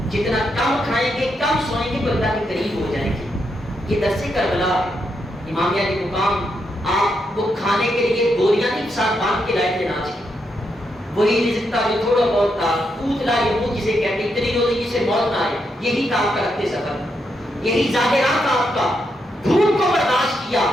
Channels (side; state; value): both; normal; correlation 0.81